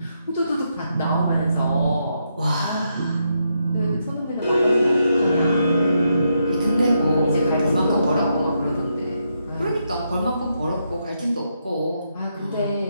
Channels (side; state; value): both; inverted; correlation -0.80